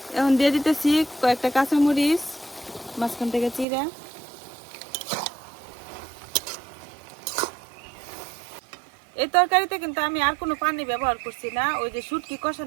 এখন দিয়ে দিতেছি কয়েকটা কাঁচামরিচ মাঝখান থেকে চিরা। এই তরকারিতে কিন্তু আমি আর কোনো পানি ব্যবহার করছি না, ওই যে শুটকি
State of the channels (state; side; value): drops out; left; at 3.7 s